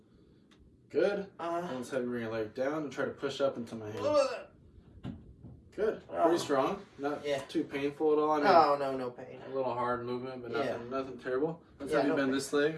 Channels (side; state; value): both; identical; correlation 1.00